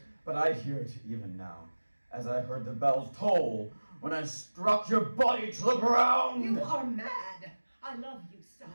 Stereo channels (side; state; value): both; inverted; correlation -1.00